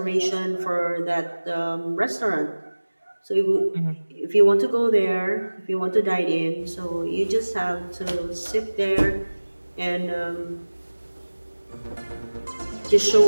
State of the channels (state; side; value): inverted; both; correlation -1.00